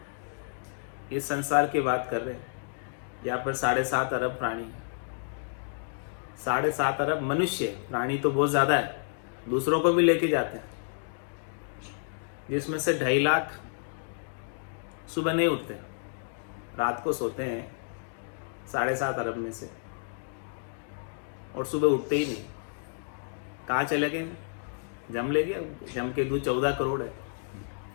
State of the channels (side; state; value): right; silent; digital silence